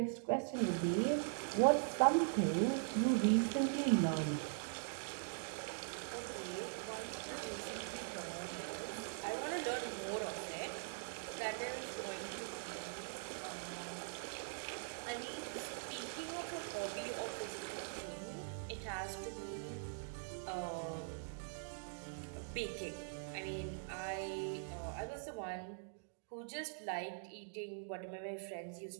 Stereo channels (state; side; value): silent; left; digital silence